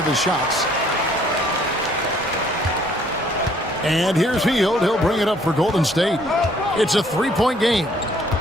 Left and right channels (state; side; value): normal; both; correlation 0.62